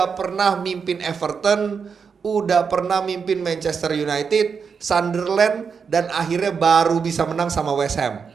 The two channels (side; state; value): left; quieter; 6.0 dB